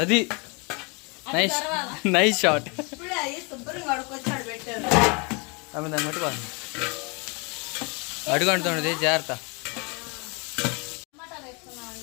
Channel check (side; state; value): right; quieter; 31.4 dB